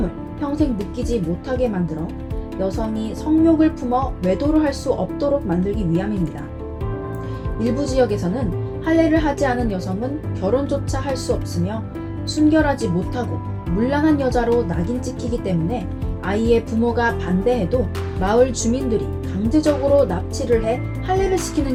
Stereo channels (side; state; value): both; identical; correlation 1.00